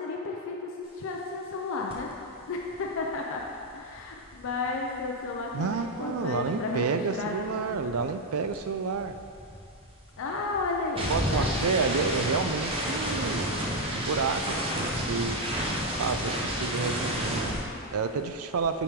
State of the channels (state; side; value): normal; both; correlation 0.02